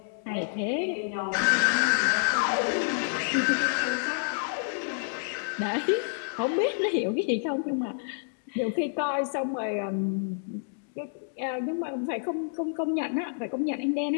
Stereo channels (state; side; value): silent; right; digital silence